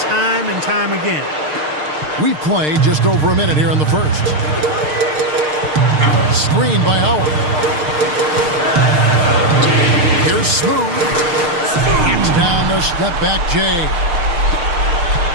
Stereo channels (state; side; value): late; left; 6.6 ms